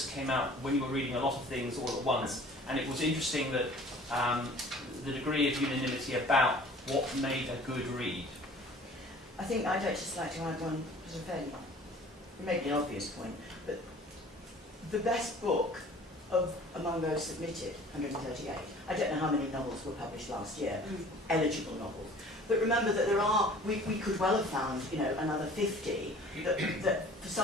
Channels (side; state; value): both; normal; correlation 0.48